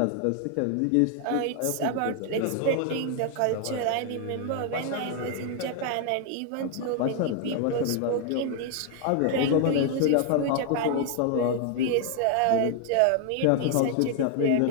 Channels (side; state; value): both; different; correlation 0.00